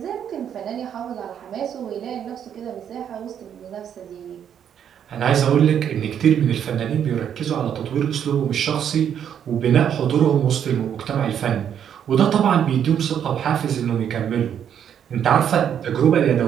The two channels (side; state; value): left; quieter; 8.9 dB